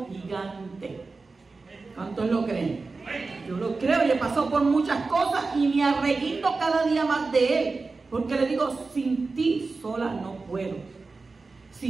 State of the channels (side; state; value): left; quieter; 4.0 dB